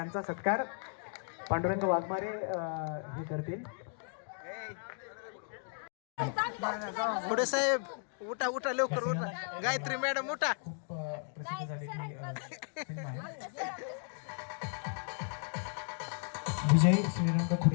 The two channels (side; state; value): right; silent; 54 dB below the other